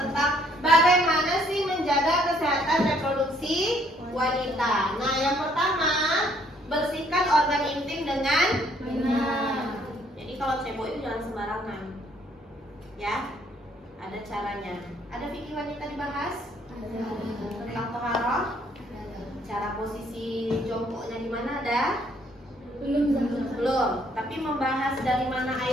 bagaimana sih menjaga kesehatan reproduksi wanita. Nah, yang pertama, bersihkan organ intim dengan benar. Jadi kalau cebok itu jangan sembarangan. Ya, ada caranya. Ada fikih wanita dibahas? Tentang toharoh? Cara posisi jongkoknya di mana ada? Belum. Tapi membahas dari mana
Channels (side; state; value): both; normal; correlation 0.65